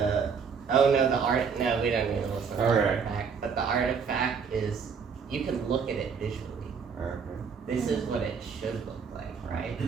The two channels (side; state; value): left; quieter; 6.1 dB